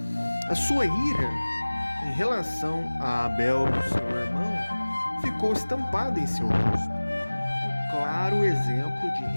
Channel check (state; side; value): inverted; both; correlation -1.00